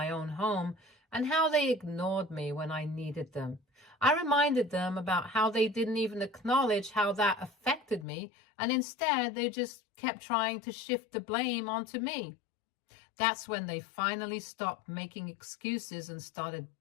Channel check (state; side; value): drops out; right; at 8.1 s